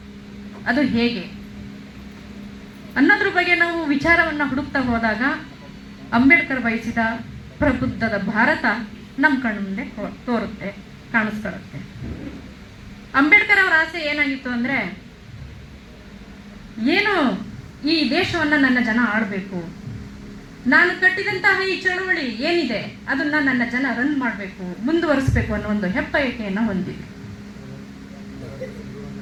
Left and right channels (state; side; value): identical; both; correlation 1.00